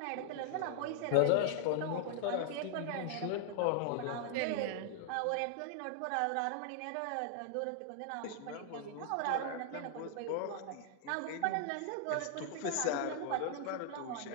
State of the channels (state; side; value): different; both; correlation 0.00